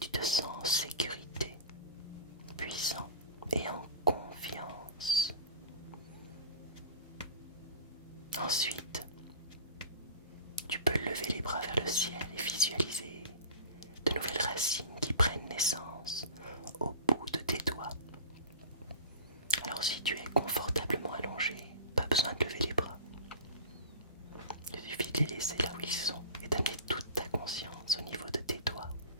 te sens en sécurité, puissant et en confiance. Ensuite, tu peux lever les bras vers le ciel et visualiser de nouvelles racines qui prennent naissance au bout de tes doigts. Alors si tu es confortablement allongé, pas besoin de lever les bras. Il suffit de les laisser là où ils sont et d'amener toute ta conscience au niveau de tes doigts.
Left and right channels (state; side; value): inverted; both; correlation -0.35